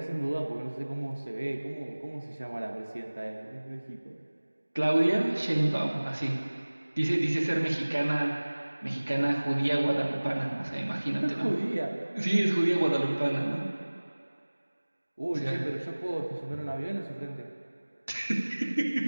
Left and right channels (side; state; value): both; inverted; correlation -1.00